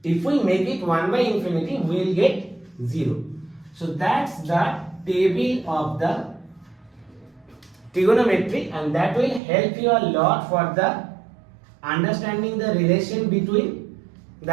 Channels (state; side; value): drops out; left; at 9.4 s